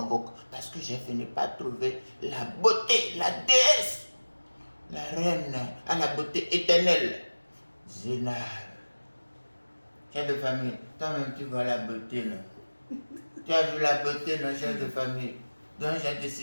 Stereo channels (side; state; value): both; inverted; correlation -1.00